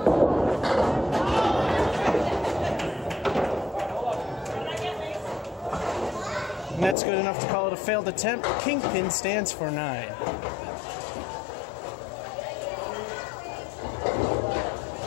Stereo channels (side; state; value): right; drops out; at 7.0 s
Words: And that's good enough to call it a failed attempt. Kingpin stands for 9.